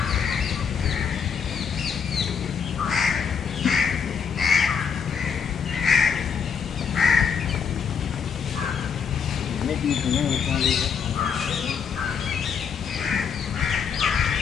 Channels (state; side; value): quieter; right; 6.7 dB